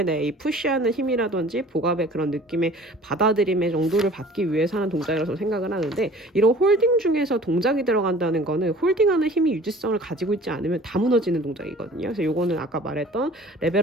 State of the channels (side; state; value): both; normal; correlation 0.47